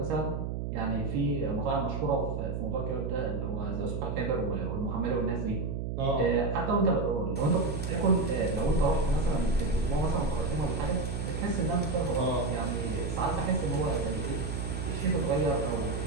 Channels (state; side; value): noise; right; hum, 3 dB below the sound